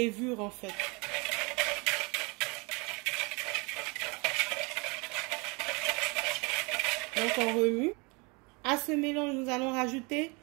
en fait. Donc on remue. À ce mélange, nous allons rajouter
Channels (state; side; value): quieter; left; 29.5 dB